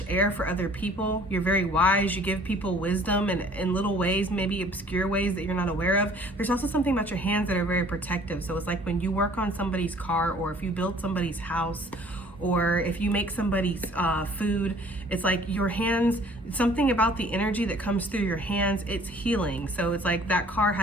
air for other people. You're very wise. You give people wisdom in little ways, maybe obscure ways that you're not aware of. There's also something about your hands that are very protective. So it's like when you work on somebody's car, or if you build somebody's house, or if you make somebody's food, it's like your hands, something about the energy that comes through your hands, it's healing. So it's like that car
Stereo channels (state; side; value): normal; both; correlation 0.53